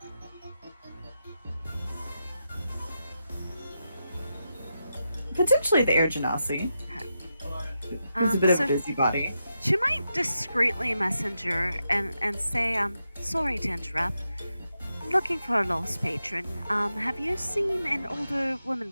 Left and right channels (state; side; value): inverted; both; correlation -0.87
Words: Potentially the Air Genasi. Who's a bit of a so busybody. she might discreetly messenger and say, sorry to interrupt. I'm looking for a lost patron. Have you seen an older woman